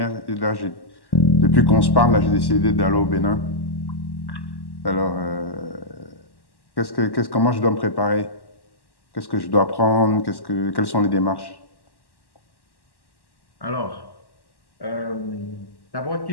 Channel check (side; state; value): right; late; 1.1 ms